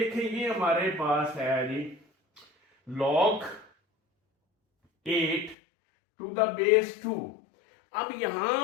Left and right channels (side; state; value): right; drops out; at 5.6 s